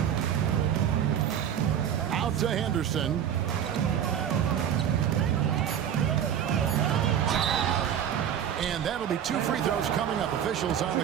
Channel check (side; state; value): left; quieter; 9.3 dB